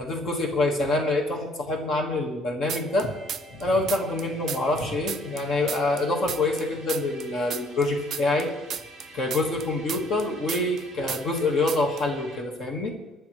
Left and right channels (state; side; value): normal; both; correlation 0.60